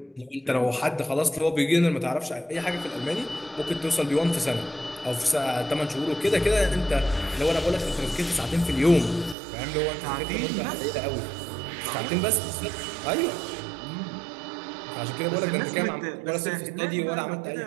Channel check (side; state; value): left; drops out; at 9.3 s